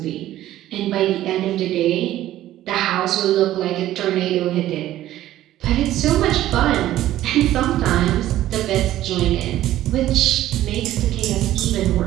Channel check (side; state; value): left; quieter; 13.9 dB